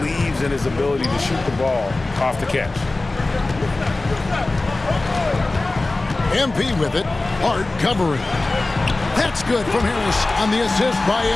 in his ability to shoot the ball off the catch. MP with it. Hart covering. That's good from Harris on the assist by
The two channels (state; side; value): quieter; right; 3.1 dB